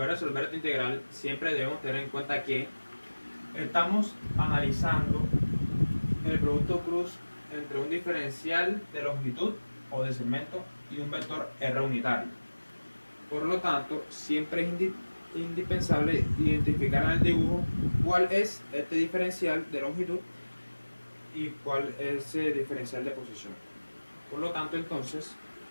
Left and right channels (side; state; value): both; inverted; correlation -1.00